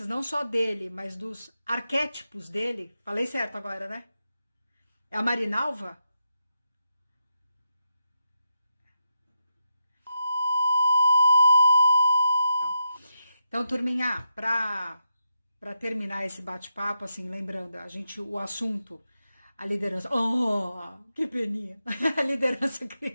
não só dele, mas dos arquétipos dele, falei certo agora, né? É a Marinalva? Então, turminha, para terminar esse bate-papo, assim, lembrando, o assunto, a liderança, oh, que peninha, a liderança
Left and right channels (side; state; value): both; inverted; correlation -0.84